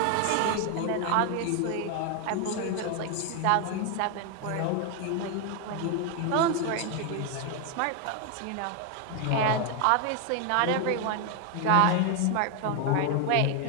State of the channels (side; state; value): both; different; correlation 0.01